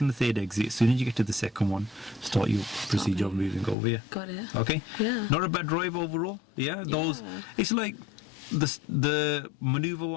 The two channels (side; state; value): right; drops out; at 3.8 s